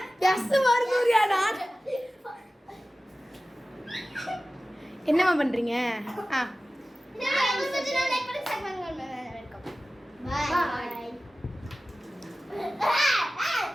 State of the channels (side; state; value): both; normal; correlation 0.96